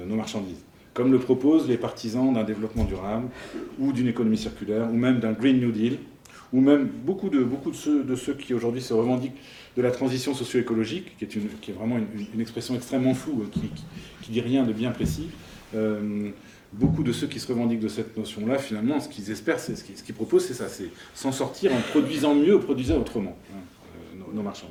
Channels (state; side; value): identical; both; correlation 1.00